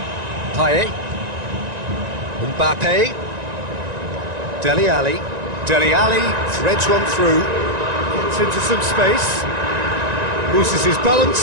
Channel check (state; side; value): late; left; 1.9 ms